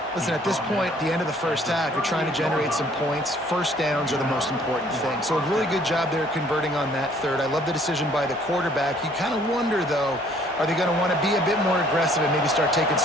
Listen, at this point, the end of the first half, you're trying to generate some points. First downs are the most important thing. So a really good job there converting on that third. I love the decision by the quarterback. You kind of wonder, though, are they going to want to be a bit more aggressive and maybe start taking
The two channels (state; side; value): normal; both; correlation 0.59